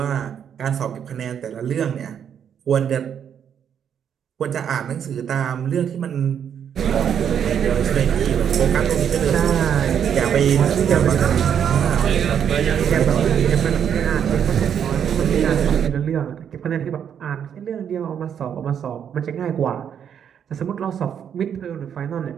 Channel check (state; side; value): quieter; left; 8.4 dB